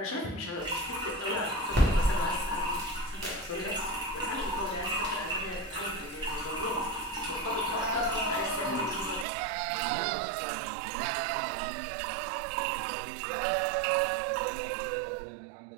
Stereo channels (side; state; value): left; drops out; at 9.2 s